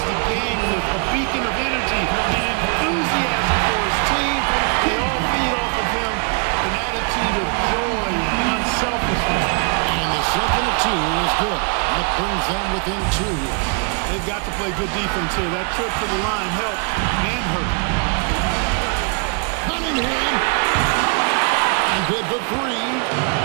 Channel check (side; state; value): left; quieter; 38.3 dB